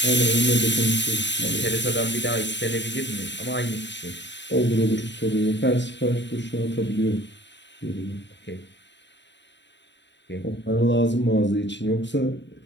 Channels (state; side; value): late; right; 0.52 ms